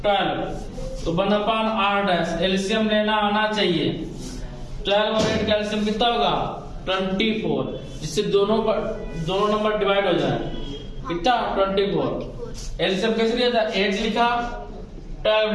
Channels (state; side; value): identical; both; correlation 1.00